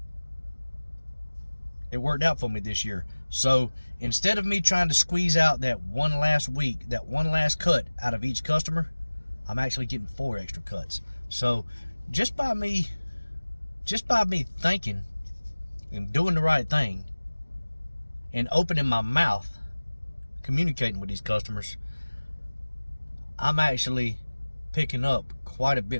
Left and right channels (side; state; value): both; inverted; correlation -1.00